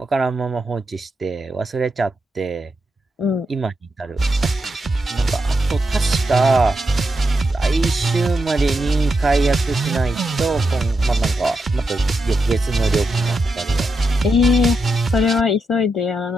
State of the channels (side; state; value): both; normal; correlation 0.85